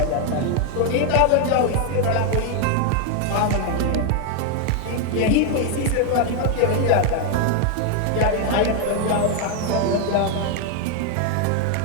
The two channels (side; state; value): both; different; correlation 0.01